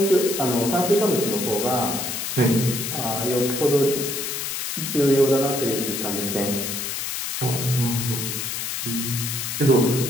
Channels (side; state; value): left; noise; hiss, 3 dB below the sound